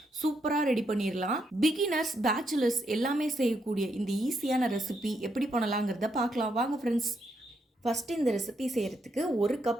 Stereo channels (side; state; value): both; normal; correlation 0.78